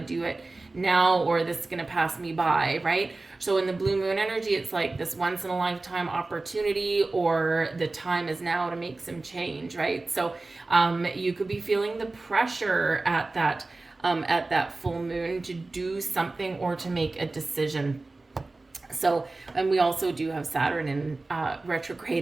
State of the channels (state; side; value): quieter; left; 3.3 dB